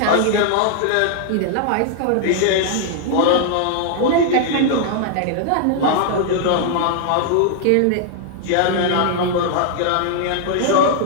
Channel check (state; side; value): different; both; correlation -0.01